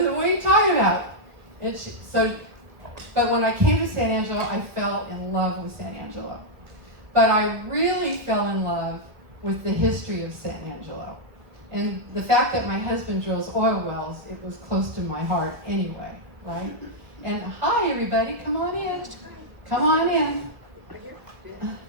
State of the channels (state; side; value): late; left; 1.4 ms